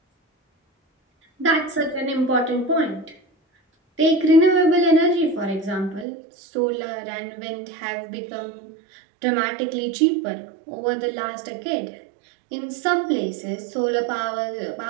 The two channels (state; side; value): drops out; left; at 6.1 s